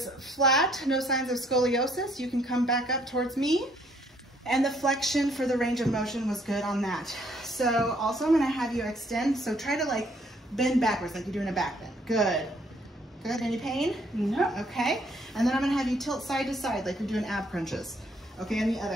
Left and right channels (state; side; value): normal; both; correlation 0.66